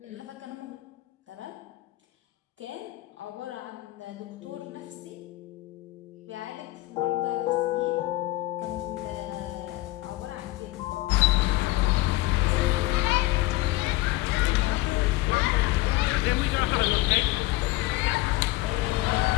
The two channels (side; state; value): right; quieter; 18.8 dB